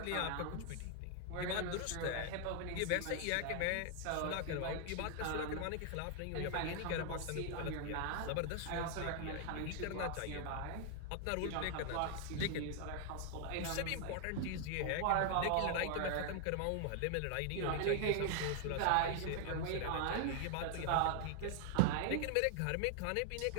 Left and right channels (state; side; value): different; both; correlation 0.00